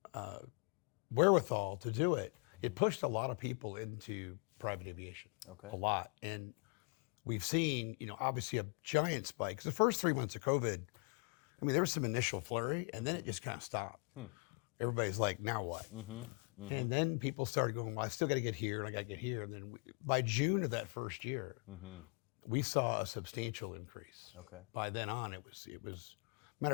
wherewithal to do it, it pushed a lot of people into private aviation. Okay. A lot. And we've seen, obviously a giant spike. 'Cause the first 3 months of COVID, there was some initial flurry, and then it just kind of stopped. Everybody's like, now what? And then people started going, well, I still got to get here and I got to get here. And then by June of that first year, we saw a substantial increase. Okay. By then on, it was, matter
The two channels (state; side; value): quieter; right; 36.1 dB